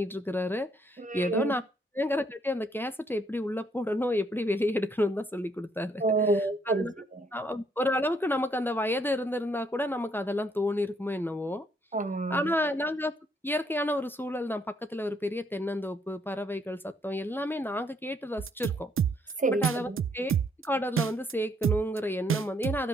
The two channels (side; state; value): both; normal; correlation 0.70